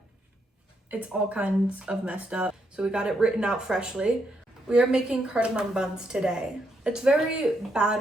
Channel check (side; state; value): both; normal; correlation 0.78